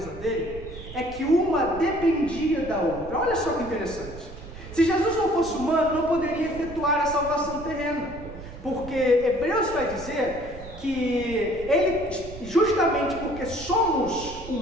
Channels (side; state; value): right; noise; rumble, 14 dB below the sound